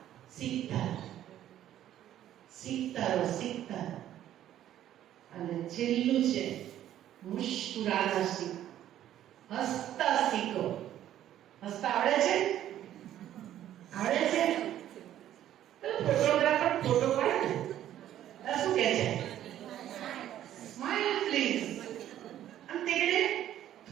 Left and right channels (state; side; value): quieter; left; 11.9 dB